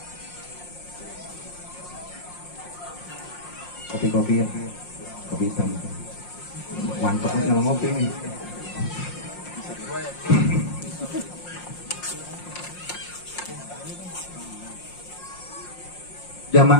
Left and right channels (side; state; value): right; late; 5.6 ms